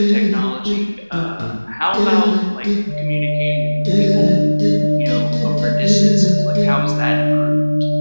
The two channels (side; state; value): both; inverted; correlation -1.00